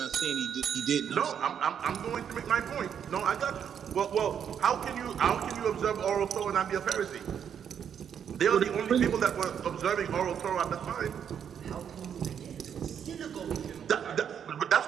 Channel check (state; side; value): quieter; left; 8.2 dB